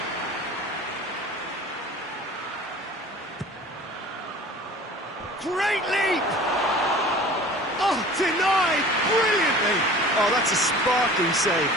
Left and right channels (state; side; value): normal; both; correlation 0.43